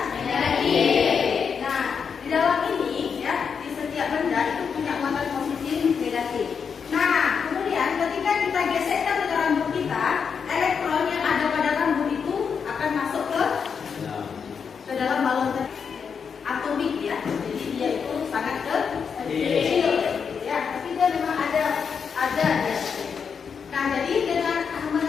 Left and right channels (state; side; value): quieter; right; 6.4 dB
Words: negatif. Nah, di dalam ini ya, di setiap benda itu punya muatan positif negatif. Nah, kemudian ketika kita gesekkan dengan rambut kita, elektron yang ada pada rambut itu akan masuk ke dalam balon atomik ya. Jadi dia itu sangat kecil ya, tapi dia memang ada ya. Nah, jadi dengan